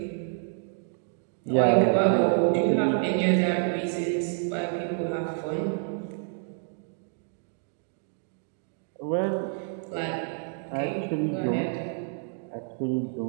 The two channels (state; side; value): silent; left; 59 dB below the other